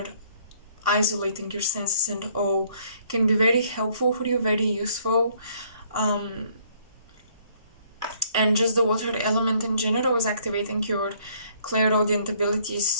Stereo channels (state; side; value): inverted; both; correlation -0.64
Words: isolating your senses, and can be very helpful for you, very useful. um, and just the water element in general is activating your clairaudient abilities.